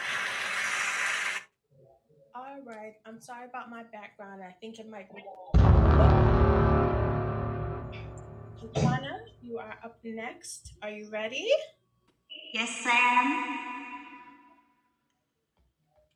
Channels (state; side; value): identical; both; correlation 1.00